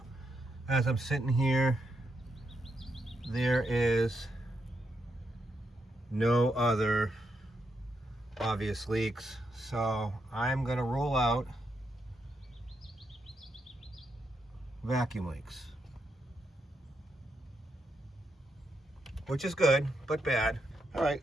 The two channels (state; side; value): normal; both; correlation 0.81